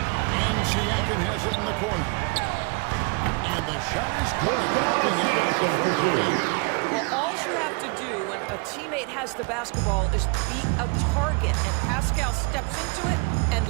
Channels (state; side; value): quieter; left; 30.6 dB